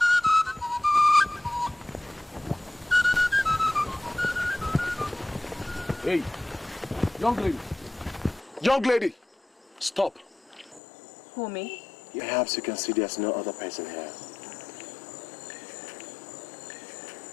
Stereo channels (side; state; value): right; drops out; at 10.8 s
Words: Hey, young lady. Young lady, stop. Who, me? Perhaps you can see there's no other person here.